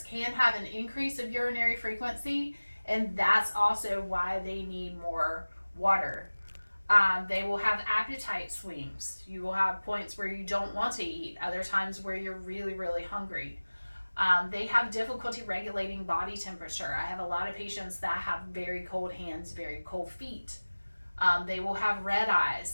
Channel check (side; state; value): both; inverted; correlation -1.00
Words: can have an increase of urinary frequency, and that's also why they need more water. They will have appetite swings. You will have points where you don't want to eat, other times where you're really, really hungry. They have difficulty regulating body temperature. I have a lot of patients that have very cold hands, very cold feet. They will have red eyes.